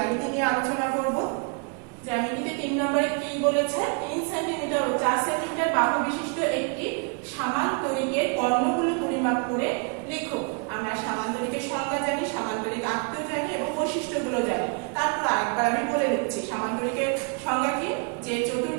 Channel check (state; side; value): quieter; left; 37.2 dB